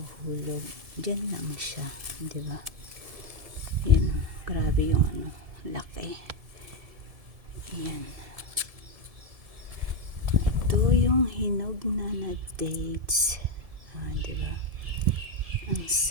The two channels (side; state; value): left; late; 1.7 ms